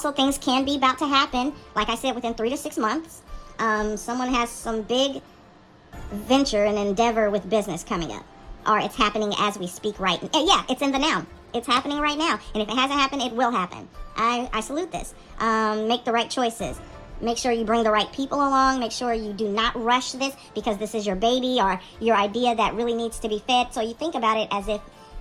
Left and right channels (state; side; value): identical; both; correlation 1.00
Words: things can be about to happen, like I said, within 3 to 6 months. Someone has some big venture and endeavor with business coming up. Or it's happening as we speak right now. Yeah, it's in the now. It's happening right now. And if it hasn't happened, it will happen. I salute this. Make the right choices. Make sure you bring the right people along. Make sure you do not rush this because this is your baby or your idea that really needs to be fed. So you think about it as if,